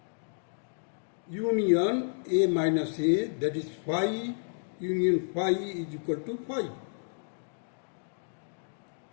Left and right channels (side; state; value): right; silent; digital silence